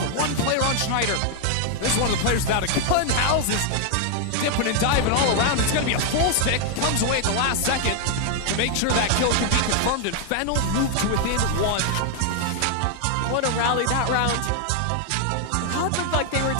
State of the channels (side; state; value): both; different; correlation 0.00